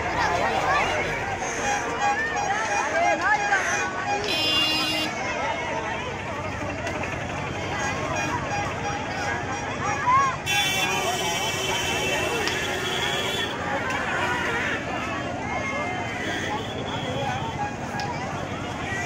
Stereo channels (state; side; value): identical; both; correlation 1.00